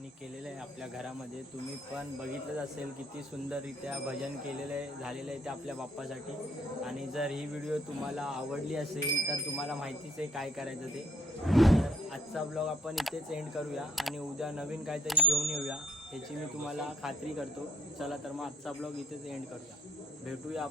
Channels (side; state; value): both; normal; correlation 0.64